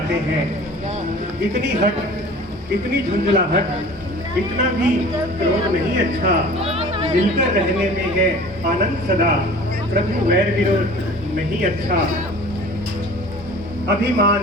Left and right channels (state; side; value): normal; both; correlation 0.44